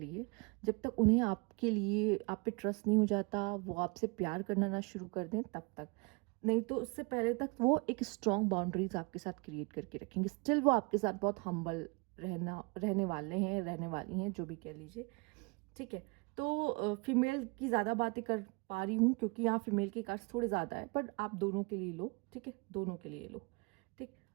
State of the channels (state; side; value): quieter; left; 29.7 dB